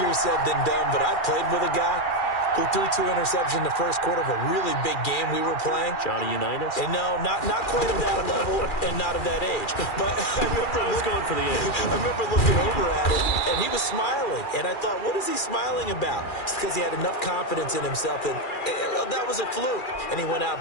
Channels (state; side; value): late; right; 2.4 ms